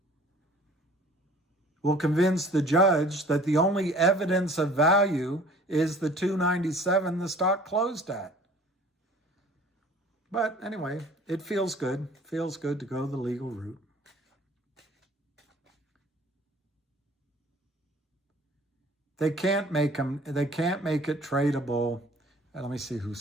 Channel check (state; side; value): normal; both; correlation 0.50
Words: will convince the judge that the only evidence of value is the $297 the stock closed at. But anyway, it feels good. Feels good to go the legal route. They can't make it tradable. Let me see who